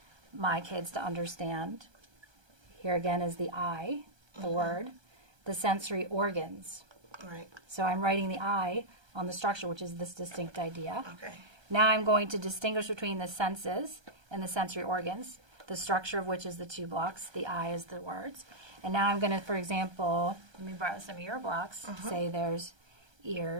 my kids to understand, here again is the I, the word, the sensory organs. Right. So I'm writing the I on the structure, which is this distinct idea. Okay. Now I'm going to distinguish between the senses and the sensory organs, the structure of which is the two blocks, the I is the words. And now I'm going to, for example, let me borrow some of your blocks, say there's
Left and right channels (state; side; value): late; left; 1.3 ms